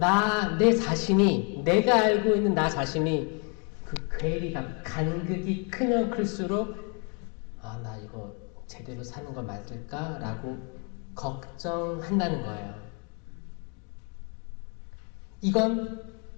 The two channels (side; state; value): right; quieter; 36.6 dB